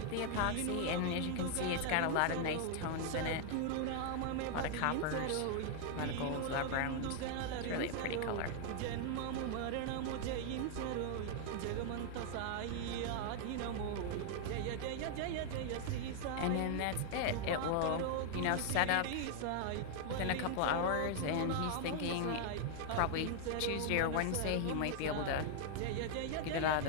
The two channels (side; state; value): both; different; correlation 0.00